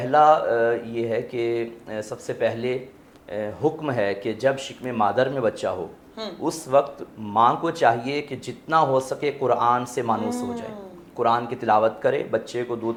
یہ ہے کہ سب سے پہلے حکم ہے کہ جب شکم مادر میں بچہ ہو اس وقت ماں کو چاہیے کہ جتنا ہو سکے قرآن سے مانوس ہو جائے، قرآن کی تلاوت کرے. بچے کو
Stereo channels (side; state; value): both; identical; correlation 1.00